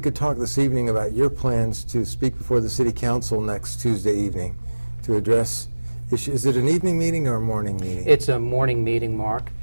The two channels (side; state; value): both; inverted; correlation -1.00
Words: could talk this evening about your plans to speak before the City Council next Tuesday evening to address issues. Is it an evening meeting or a morning meeting? It's a morning meeting, Mark,